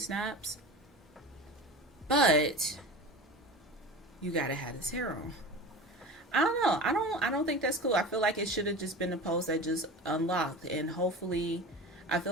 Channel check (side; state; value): both; normal; correlation 0.33